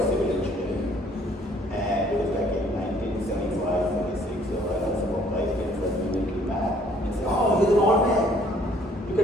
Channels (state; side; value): normal; both; correlation 0.61